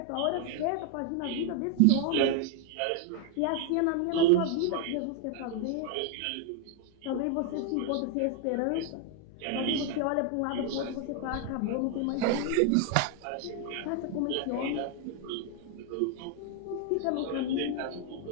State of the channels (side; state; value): both; different; correlation 0.00